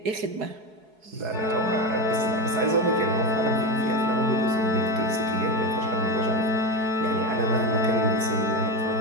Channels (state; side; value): late; left; 4.7 ms